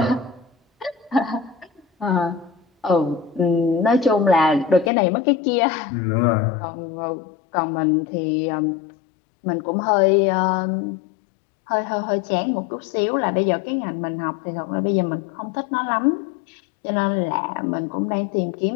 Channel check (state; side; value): drops out; right; at 4.9 s